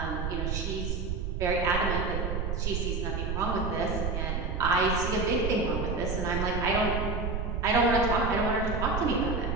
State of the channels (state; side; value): noise; right; rumble, 2 dB below the sound